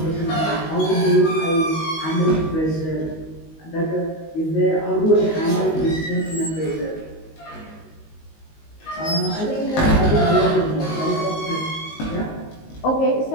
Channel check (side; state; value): right; late; 19 ms